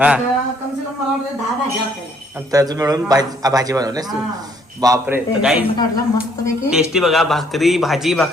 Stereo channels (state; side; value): normal; both; correlation 0.65